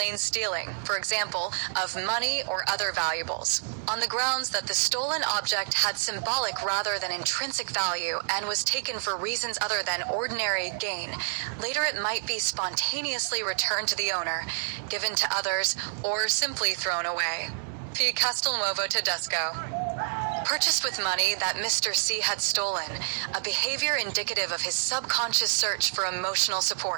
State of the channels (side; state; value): left; silent; 59 dB below the other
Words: stealing, for example, of money or other valuables, on the grounds that the stolen object had symbolic rather than intrinsic value and was taken for reasons other than ordinary gain. Later it might be spontaneously returned to the owner, given to others, or simply thrown away. P. Castelnuovo-Tedesco. Purchased with money that Mr. C had stolen, a behavior indicative of his subconscious search for emotional